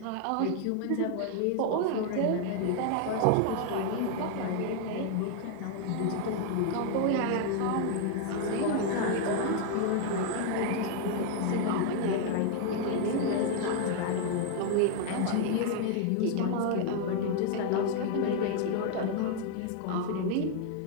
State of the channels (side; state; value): both; different; correlation 0.00